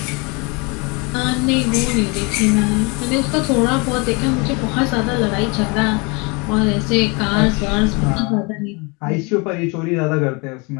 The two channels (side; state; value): right; quieter; 29.7 dB